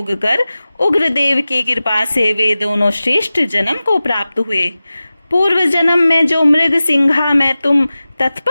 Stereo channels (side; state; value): both; inverted; correlation -0.96